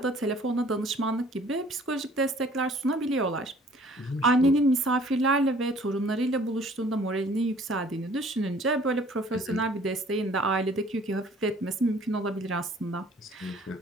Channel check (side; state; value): both; normal; correlation 0.55